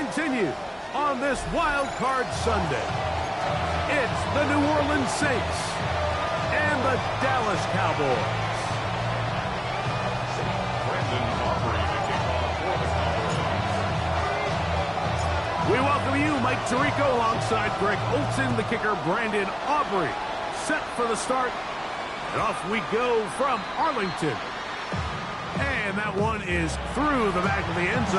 on this Wild Card Sunday. It's the New Orleans Saints and the Dallas Cowboys. We welcome you, Mike Tirico, alongside Greg Olson, the kicker, Brandon Aubrey. Set for the start, and off we go from Arlington. And that one is through the back of the end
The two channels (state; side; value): identical; both; correlation 1.00